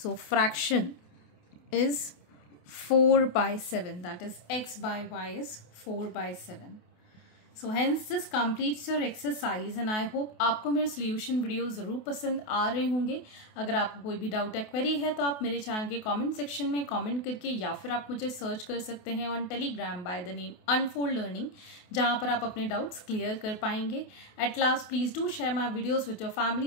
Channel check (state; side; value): late; right; 28 ms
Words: So fraction is 4 by 7. That is x by y is 4 by 7. So hence this completes your exercise and I hope आपको मेरे solution video ज़रूर पसंद आ रहे होंगे. अगर आपको कोई भी डाउट या क्वेरी है तो आप मेरे चैनल के कमेंट सेक्शन में कमेंट करके या फिर आप मुझे सर्च कर सकते हैं on Telegram by the name Unfold Learning, जहाँ पर आप अपने डाउट्स क्लियर कर पाएंगे. At last please do share my videos with your